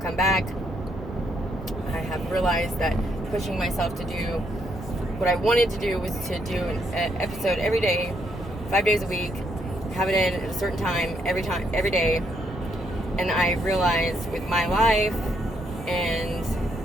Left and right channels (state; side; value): normal; both; correlation 0.74